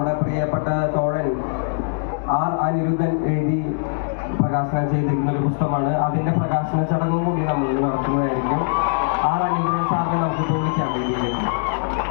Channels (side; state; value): right; silent; digital silence